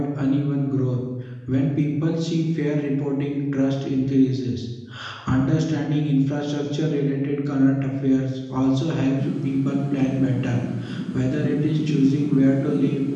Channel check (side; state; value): both; identical; correlation 1.00